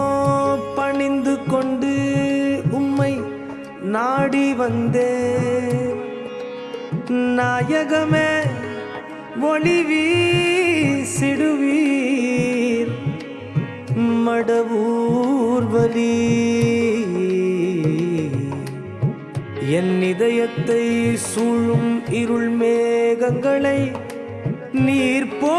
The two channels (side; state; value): both; identical; correlation 1.00